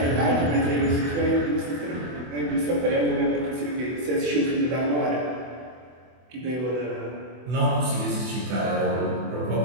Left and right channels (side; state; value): left; late; 24 ms